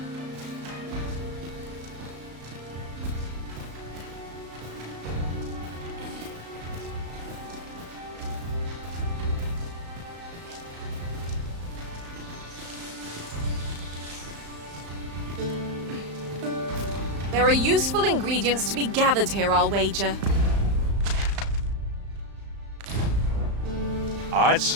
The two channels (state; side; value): late; left; 35 ms